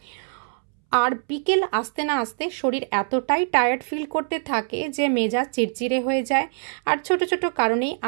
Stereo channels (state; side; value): silent; left; 63 dB below the other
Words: আর বিকেল আসতে না আসতে শরীর এতটাই টায়ার্ড ফিল করতে থাকে যে মেজাজ চিড়চিড়ে হয়ে যায়, আর ছোট ছোট কারণেই